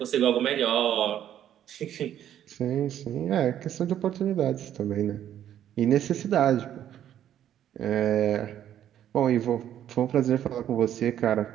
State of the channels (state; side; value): quieter; left; 10.8 dB